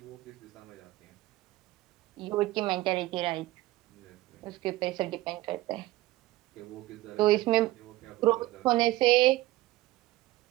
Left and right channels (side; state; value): left; quieter; 17.7 dB